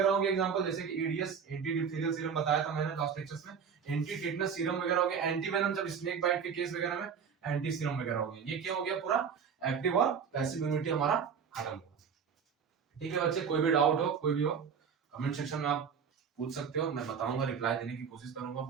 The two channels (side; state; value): left; quieter; 6.8 dB